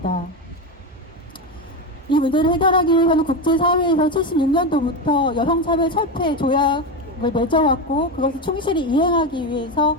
이 문제를 해결하기 위해서는 국제사회에서 76년도부터 여성차별 철폐 조약을 맺어왔고 그것을 충실히 이행하기 위해서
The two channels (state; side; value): normal; both; correlation 0.15